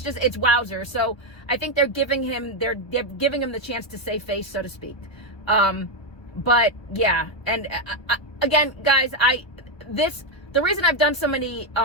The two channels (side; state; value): right; late; 1.4 ms